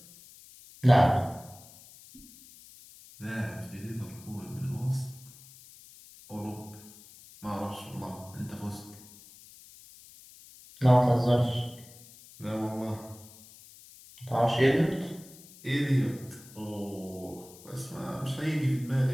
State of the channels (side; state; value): left; noise; hiss, 21 dB below the sound